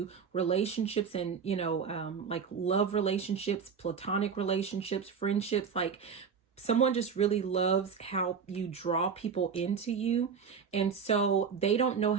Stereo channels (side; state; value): left; quieter; 6.3 dB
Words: relationships and, like love relationships, platonic relationships, friendships, like someone just really loves how you draw people into you. And so they don't know